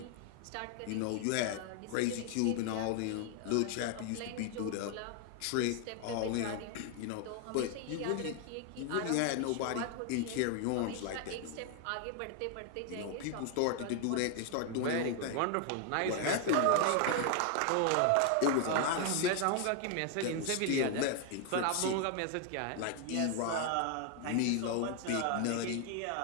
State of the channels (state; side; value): different; both; correlation 0.00